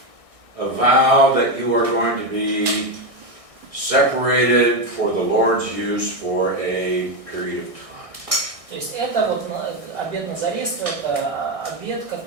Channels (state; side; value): late; left; 1.6 ms